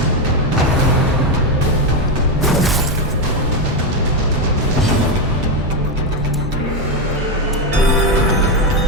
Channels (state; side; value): normal; both; correlation 0.08